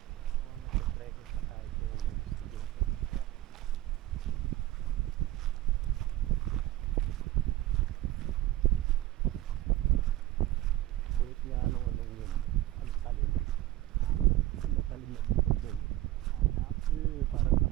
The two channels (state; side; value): quieter; left; 15.2 dB